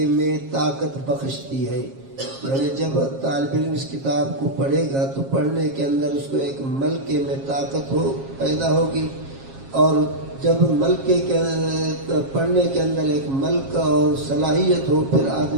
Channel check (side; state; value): left; late; 7.4 ms